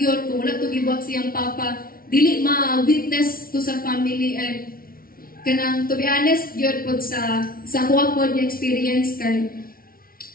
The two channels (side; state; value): right; late; 0.43 ms